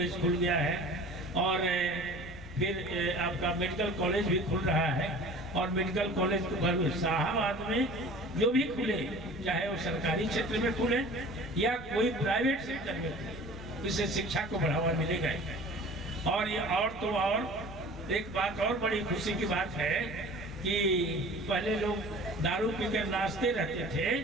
खुल गया है और फिर आपका मेडिकल कॉलेज भी खुल रहा है। और मेडिकल कॉलेज को शाहाबाद में जो भी खुले, चाहे वो सरकारी क्षेत्र में खुले या कोई प्राइवेट सेक्टर में खुले, इससे शिक्षा को बढ़ावा मिलेगा। और ये और एक बात और बड़ी खुशी की बात है कि पहले लोग दारू पीकर नाचते रहते थे,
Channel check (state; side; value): noise; right; rumble, 19 dB below the sound